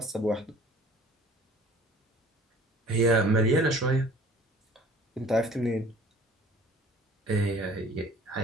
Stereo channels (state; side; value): normal; both; correlation 0.49